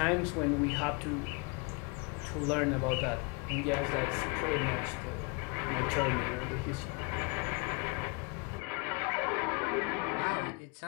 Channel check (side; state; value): right; quieter; 30.2 dB